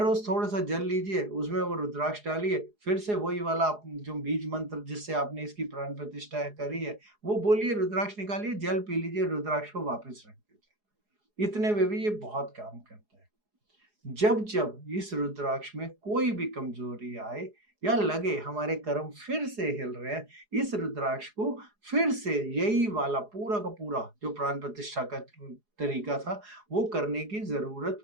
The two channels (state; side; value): late; left; 4.8 ms